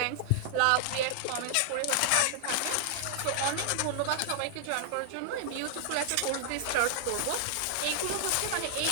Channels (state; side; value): different; both; correlation -0.01